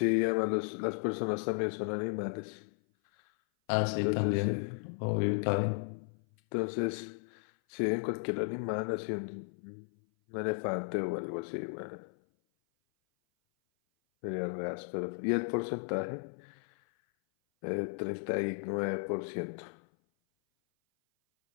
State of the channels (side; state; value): right; silent; 55 dB below the other